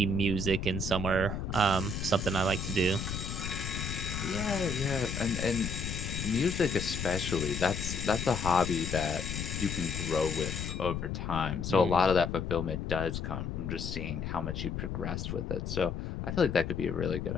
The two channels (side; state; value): left; noise; rumble, 4 dB below the sound